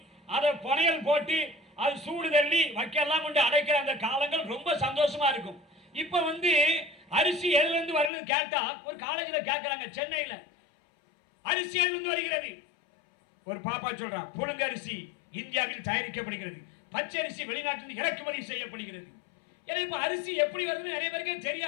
அதை புனையல் போட்டு அது சூடு தள்ளி வைக்கலாம் கொண்டு அடைக்கிற அந்த காலங்கள் ரொம்ப சந்தோஷமா இருக்கும். இப்ப வந்து அரிசி எதுல இருந்து வருது கேட்டா ஒரு காலேஜ்ல கேட்கறாங்க, சென்னையில அரிசி எதுல இருந்து வருகிறது? ஒரு பாப்பா சொல்றான், புழுங்க அரிசி இந்தியாவில் தயாரிக்கப்படுகிறது, பச்சை அரிசி வெளிநாட்டில் இறக்குமதி செய்யப்படுகிறது. ஏன்னா இப்ப அரிசி எப்படி வருதுன்னு நிறைய பேருக்கே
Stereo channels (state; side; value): drops out; right; at 8.1 s